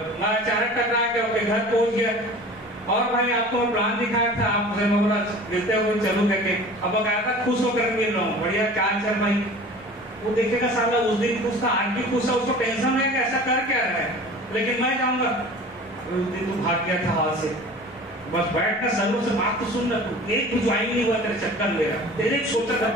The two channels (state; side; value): normal; both; correlation 0.41